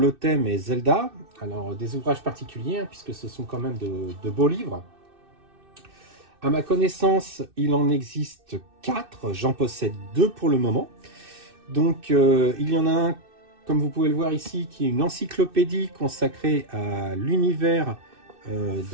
thème est Zelda. Alors des ouvrages particuliers puisque ce sont quand même de beaux livres. À ma connaissance il en existe 4, j'en possède 2 pour le moment. Donc il y en a un, comme vous pouvez le voir ici, qui est une encyclopédie consacrée à l'univers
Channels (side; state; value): left; late; 2.6 ms